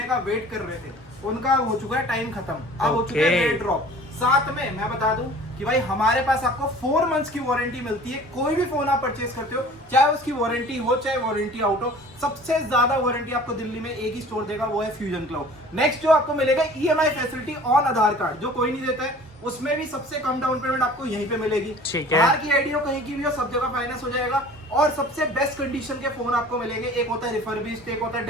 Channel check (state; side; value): normal; both; correlation 0.46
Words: का वेट कर रहे थे, उनका हो चुका है टाइम खत्म, अब हो चुका है रेट ड्रॉप। साथ में मैं बता दूं कि भाई हमारे पास आपको 4 मंथ्स की वारंटी मिलती है। कोई भी फोन आप परचेज करते हो, चाहे उसकी वारंटी हो चाहे वारंटी आउट हो, सबसे ज्यादा वारंटी आपको दिल्ली में एक ही स्टोर देगा, वो है फ्यूजन क्लाउड। नेक्स्ट जो आपको मिलेगा EMI facility on Aadhaar card, जो कोई नहीं देता है, उसमें भी सबसे कम डाउन पेमेंट आपको यहीं पे मिलेगी। बाहर की आईडी हो, कहीं की भी हो, सब जगह फाइनेंस हो जाएगा, और सबसे बेस्ट कंडीशन के फोन आपको मिलेंगे। एक होता है रिफर्बिश्ड, एक होता है